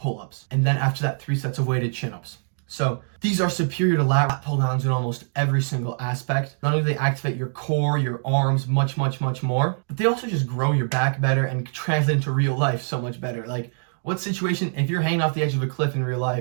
And then after that, 3 sets of weighted chin-ups. So these are superior to lat pull-downs in almost every single aspect. Not only do they activate your core, your arms, much, much, much more, but they also just grow your back better and translate into real life so much better. Like, what situation, if you're hanging off the edge of a cliff in real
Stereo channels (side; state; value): left; silent; 63 dB below the other